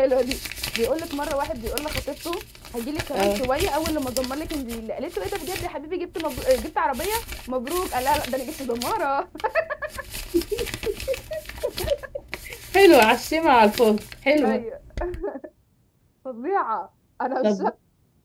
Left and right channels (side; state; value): both; identical; correlation 1.00